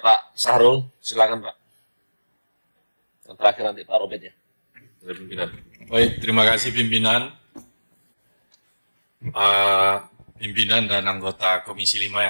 Sahrul, silakan Pak. Yang terakhir nanti Pak Robert ya, dari pimpinan. Baik, terima kasih pimpinan. Pimpinan dan anggota Komisi 5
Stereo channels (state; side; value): inverted; both; correlation -1.00